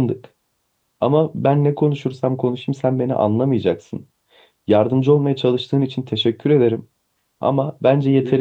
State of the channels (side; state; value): both; identical; correlation 1.00